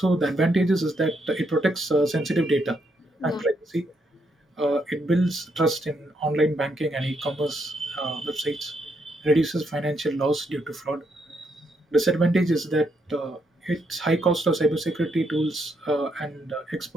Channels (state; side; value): normal; both; correlation 0.77